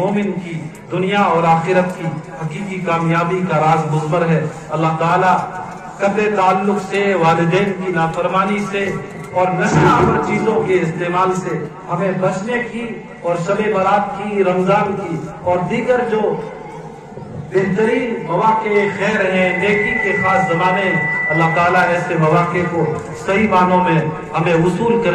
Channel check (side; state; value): both; identical; correlation 1.00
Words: کی دنیا اور آخرت کی حقیقی کامیابی کا راز مضمر ہے. اللہ تعالیٰ قطع تعلق سے، والدین کی نافرمانی سے اور نشہ آور چیزوں کے استعمال سے ہمیں بچنے کی، اور شب برات کی، رمضان کی اور دیگر جو بہترین مواقع خیر ہیں، نیکی کے خاص زمانے، اللہ تعالیٰ ایسے مواقع کو صحیح معنوں میں ہمیں وصول